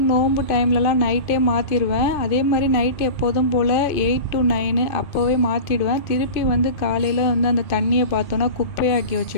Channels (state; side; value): late; right; 2.5 ms